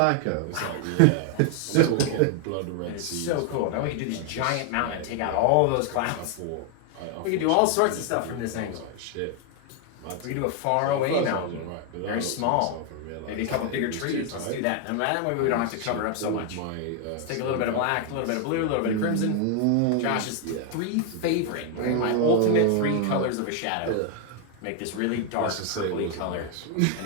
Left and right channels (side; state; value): both; different; correlation 0.00